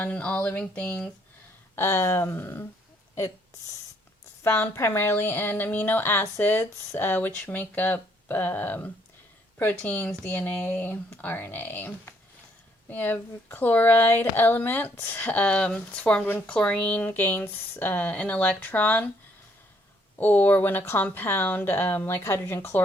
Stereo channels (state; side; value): normal; both; correlation 0.68